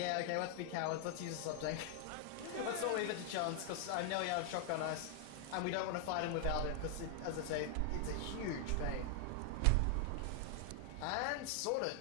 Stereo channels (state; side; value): different; both; correlation 0.00